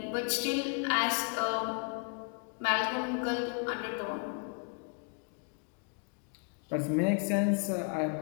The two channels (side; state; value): right; quieter; 39.6 dB